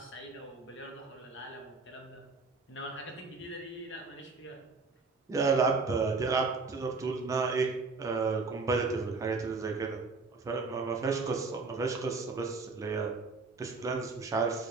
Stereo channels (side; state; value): left; quieter; 4.1 dB